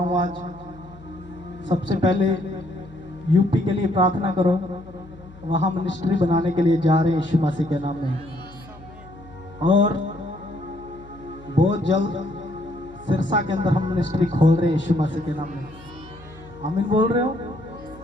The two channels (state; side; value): noise; left; hum, 21 dB below the sound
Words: हूँ आज। सबसे पहले यूपी के लिए प्रार्थना करो। वहां मिनिस्ट्री बनाने के लिए जा रहे हैं यीशु मसीह के नाम में। और बहुत जल्द सिरसा के अंदर हम मिनिस्ट्री खोल रहे हैं यीशु मसीह के नाम में। आमीन बोल रहे हो?